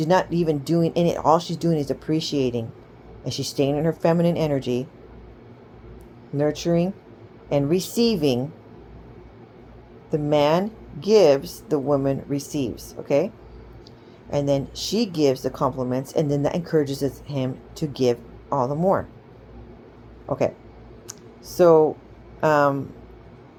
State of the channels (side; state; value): both; identical; correlation 1.00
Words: not even doing any, all she's doing is appreciating, and she's staying in her feminine energy, nurturing and receiving. The man gives, the woman receives. Okay? And then she gives the compliments, and then that encourages him to give all the more. Okay, so let